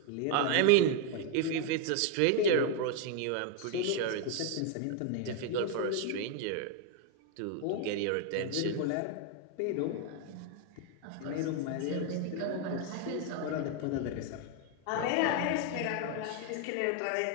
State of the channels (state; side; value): different; both; correlation 0.01